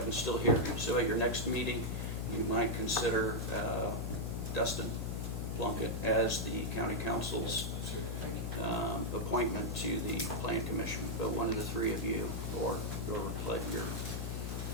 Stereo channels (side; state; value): left; noise; hum, 2 dB below the sound